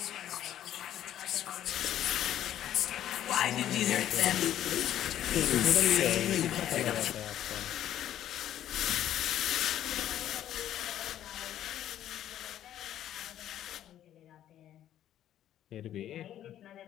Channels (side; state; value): right; quieter; 11.6 dB